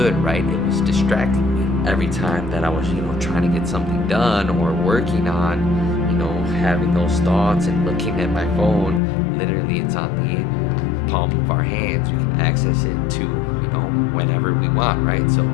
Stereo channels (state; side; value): drops out; right; at 9.0 s